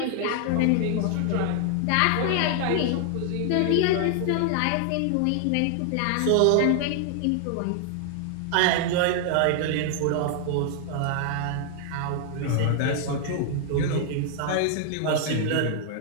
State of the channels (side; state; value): both; different; correlation 0.00